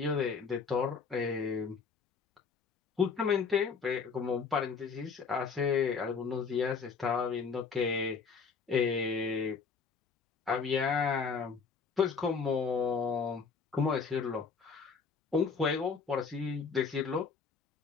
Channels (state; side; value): quieter; right; 5.4 dB